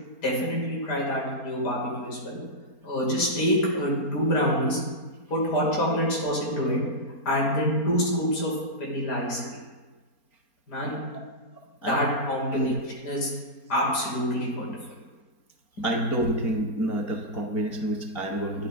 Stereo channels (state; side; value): late; right; 4.3 ms